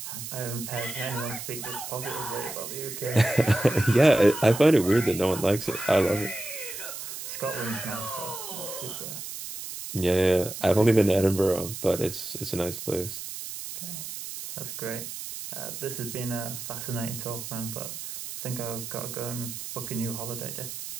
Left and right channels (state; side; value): noise; right; hiss, 8 dB below the sound